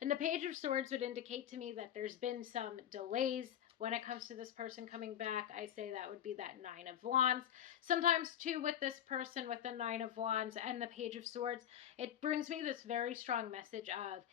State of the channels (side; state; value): right; quieter; 10.3 dB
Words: the Page of Swords would indicate to me that there's been some delays when it comes to this person coming back. I say that would be that Nine of Wands. Sometimes, too, with this person with the Nine of Wands and the Page of Swords, it brings me this very strong message of,